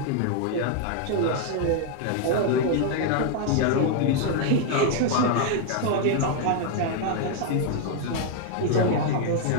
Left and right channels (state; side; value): different; both; correlation 0.00